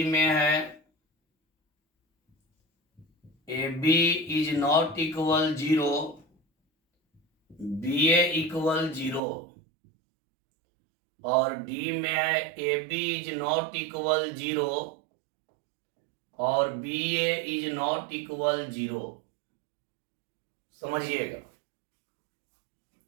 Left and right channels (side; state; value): left; drops out; at 9.2 s